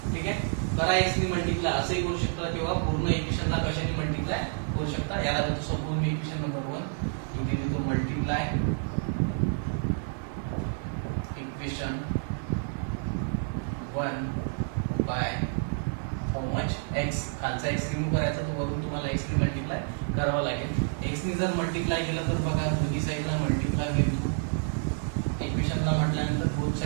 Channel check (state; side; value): silent; left; 59 dB below the other